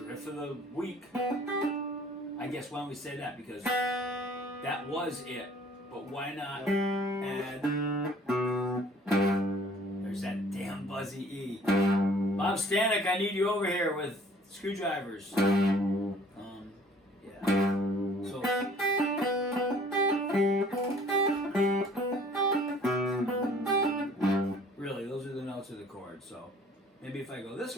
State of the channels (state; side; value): normal; both; correlation 0.54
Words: riff of the week. I guess why don't we say that? Because that was it. But why not add... There's that damn buzzy E. Bob Stanek, I need you over here with screwdrivers. Yeah. So... Really, those are the notes of the chord. So maybe if I go this